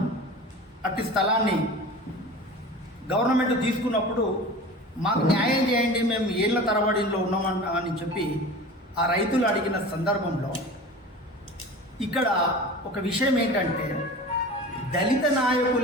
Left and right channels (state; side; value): normal; both; correlation 0.36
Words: అట్టి స్థలాన్ని గవర్నమెంట్ తీసుకున్నప్పుడు మాకు న్యాయం చేయండి, మేము ఏళ్ల తరబడిలో ఉన్నామని చెప్పి ఆ రైతులు అడిగిన సందర్భంలో ఇక్కడ ఒక విషయం ఏంటంటే, దళిత